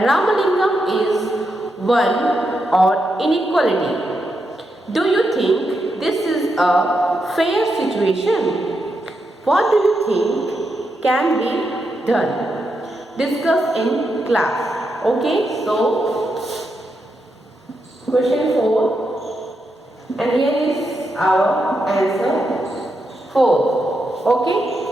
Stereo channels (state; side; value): normal; both; correlation 0.84